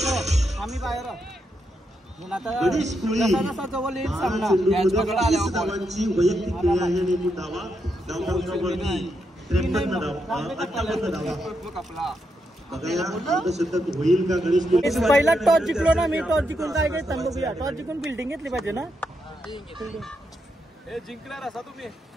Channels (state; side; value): normal; both; correlation 0.82